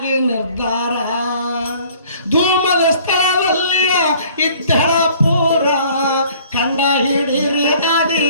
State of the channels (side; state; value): both; inverted; correlation -0.55